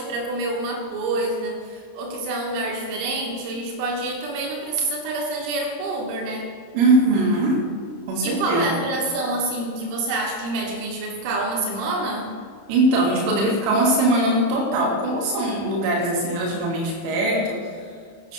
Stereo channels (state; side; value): late; left; 30 ms